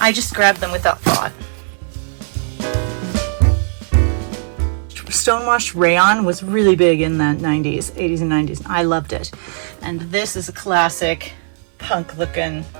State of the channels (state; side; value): silent; left; 67 dB below the other